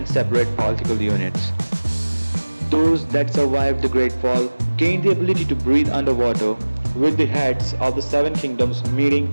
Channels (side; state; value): both; inverted; correlation -1.00